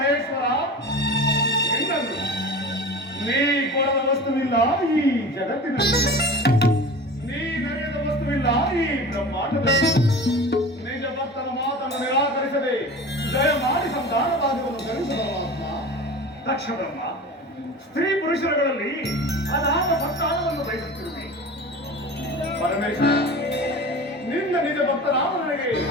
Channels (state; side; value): normal; both; correlation 0.35